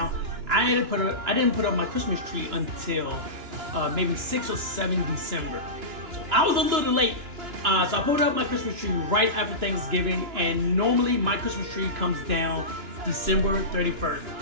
I didn't put up my Christmas tree until maybe 6 or 7 December. So I was a little late. So I put up my Christmas tree right after Thanksgiving, and normally my Christmas tree comes down December 31st.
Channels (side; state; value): left; late; 2.9 ms